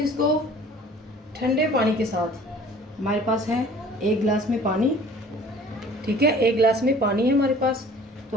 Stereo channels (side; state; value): both; normal; correlation 0.49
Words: इसको ठंडे पानी के साथ, हमारे पास है 1 गिलास में पानी, ठीक है, 1 गिलास में पानी है हमारे पास। तो